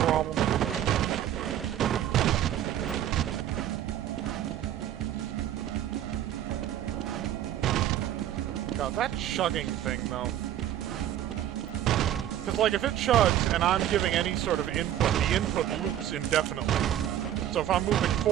problem. God, that chugging thing, though. Because, like, if it chugs and I'm giving any sort of input, the input loops indefinitely. So if I'm moving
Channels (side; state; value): left; quieter; 11.6 dB